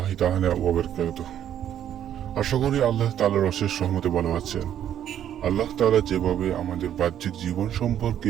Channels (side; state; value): left; quieter; 10.4 dB